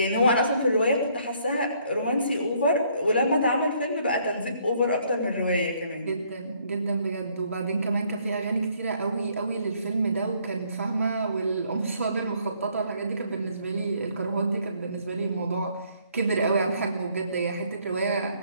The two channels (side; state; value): both; inverted; correlation -0.66